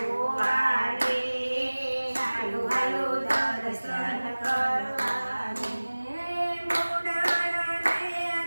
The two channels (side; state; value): both; inverted; correlation -1.00